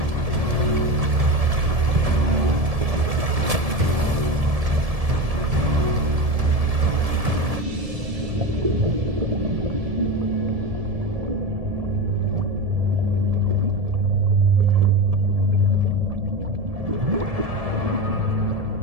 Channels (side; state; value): left; late; 1.7 ms